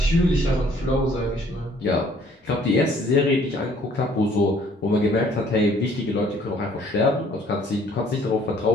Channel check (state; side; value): normal; both; correlation 0.60